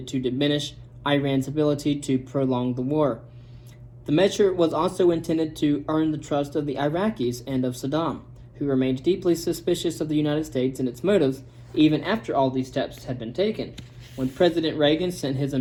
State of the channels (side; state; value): both; identical; correlation 1.00